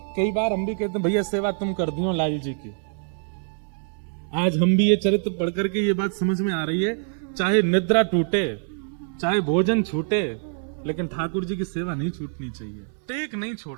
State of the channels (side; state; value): left; silent; 62 dB below the other